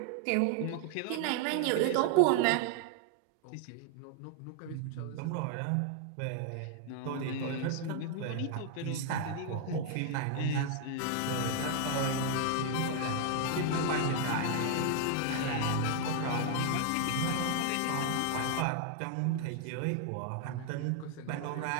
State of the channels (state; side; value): different; both; correlation 0.00